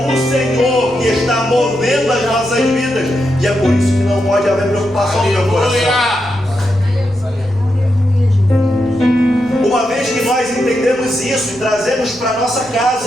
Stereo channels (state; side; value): noise; right; rumble, 24 dB below the sound